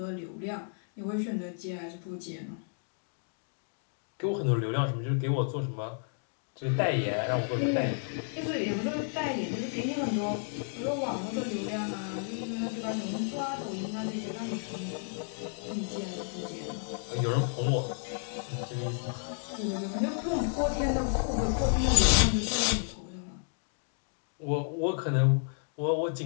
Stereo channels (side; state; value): right; silent; digital silence